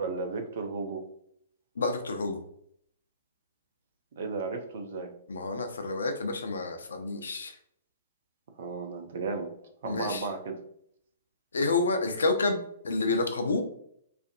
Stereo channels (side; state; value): both; inverted; correlation -0.55